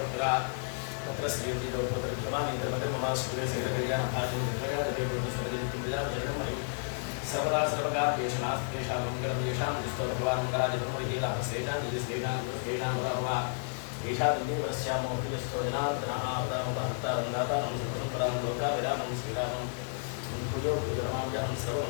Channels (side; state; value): right; silent; digital silence